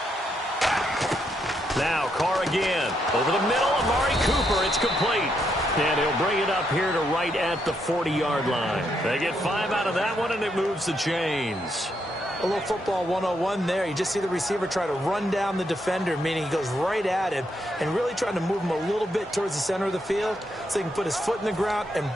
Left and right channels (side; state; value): both; normal; correlation 0.78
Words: Now Carr again. Over the middle, Amari Cooper. It's complete. And he'll bring it up here to right at the 40-yard line. They get 5 out of that one, and it moves the chains. A little football 101 there. You just see the receiver try to run down the defender, meaning he goes right at him and really trying to move him a little bit towards the center of the field so he can put his foot in the ground and